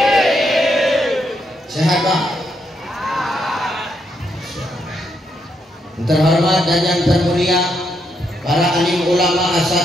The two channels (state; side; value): normal; both; correlation 0.78